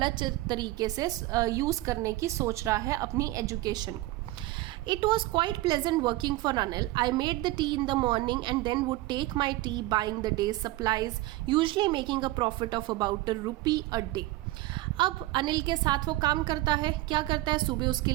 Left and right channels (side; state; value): left; quieter; 18.0 dB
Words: तरीके से यूज़ करने की सोच रहा है अपनी एजुकेशन को। It was quite pleasant working for Anil. I made the tea in the morning and then would take my tea buying the day's supplies, usually making a profit of about ₹1 a day. अब अनिल के साथ वो काम करता है, क्या करता है, सुबह उसके